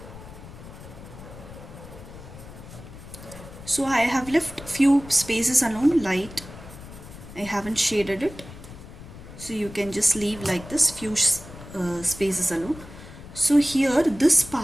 So I have left few spaces alone, light. I haven't shaded it. So you can just leave like this, few spaces alone. So here, this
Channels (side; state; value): left; noise; rumble, 15 dB below the sound